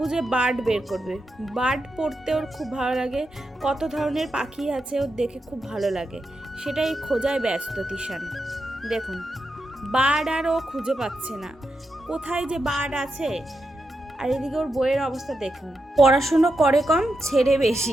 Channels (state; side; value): normal; both; correlation 0.86